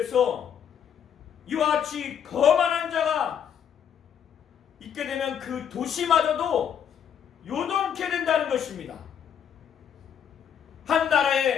이와 같이 거만한 자가 있게 되면 그 도시마저도 요동케 된다는 것입니다. 한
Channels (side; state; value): right; quieter; 8.4 dB